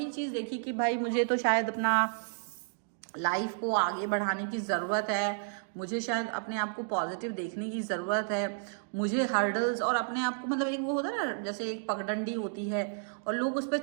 चीज़ देखी कि भाई मुझे तो शायद अपना लाइफ को आगे बढ़ाने की ज़रूरत है, मुझे शायद अपने आप को पॉजिटिव देखने की ज़रूरत है, मुझे हर्डल्स और अपने आप को मतलब एक वो होता है ना जैसे एक पगडंडी होती है और लोग उस पर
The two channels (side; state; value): left; silent; digital silence